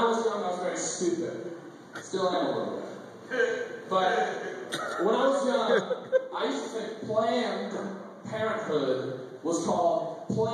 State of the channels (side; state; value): both; identical; correlation 1.00